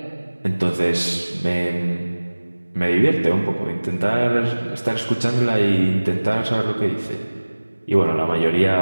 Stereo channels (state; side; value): inverted; both; correlation -1.00